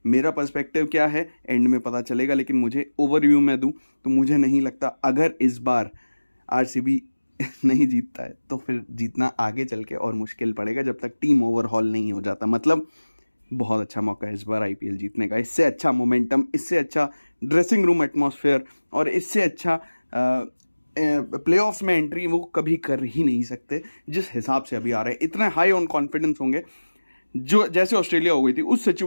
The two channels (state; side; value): inverted; both; correlation -1.00